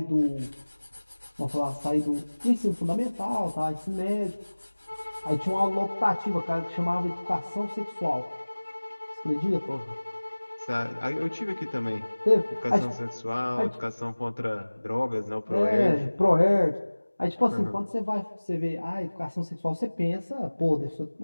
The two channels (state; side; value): inverted; both; correlation -1.00